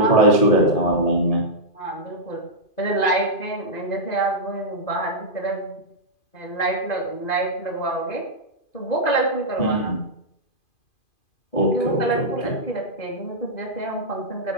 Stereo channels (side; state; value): right; late; 2.5 ms